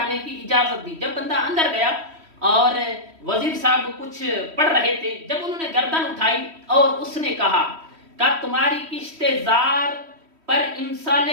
کی اجازت دی. جب بندہ اندر گیا اور وزیر صاحب کچھ پڑھ رہے تھے، جب انہوں نے گردن اٹھائی اور اس نے کہا کہ تمہاری کشت زار پر امسال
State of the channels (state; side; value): late; left; 3.1 ms